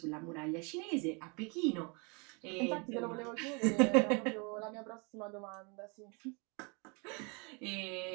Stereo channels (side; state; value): left; quieter; 32.5 dB